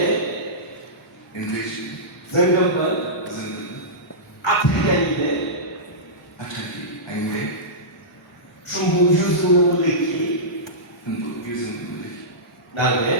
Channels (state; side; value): normal; both; correlation -0.17